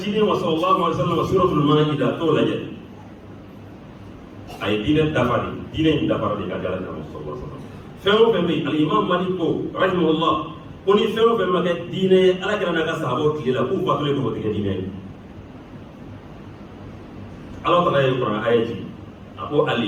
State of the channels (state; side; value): identical; both; correlation 1.00